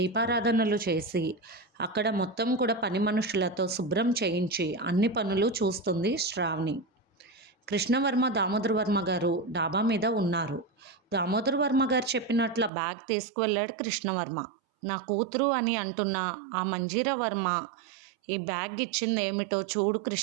చేసి అక్కడ మొత్తం కూడా పని మనుషులతో శుభ్రం చేయించి అన్ని పనులు చూస్తుంది శ్రావణి. కృష్ణవర్మ దామోదర్ వర్మ గారు డాబా మీద ఉన్నారు. దామోదర్ వర్మ గారు చెప్పినట్ల బ్యాగ్ తీసుకువెళ్ళాడు కృష్ణవర్మ. నా కూతురు అని అంటున్న ఆ మంజీరా వర్మ ఈ బ్యాగ్ ఇచ్చింది ఏమిటో చూడు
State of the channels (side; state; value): left; drops out; at 12.7 s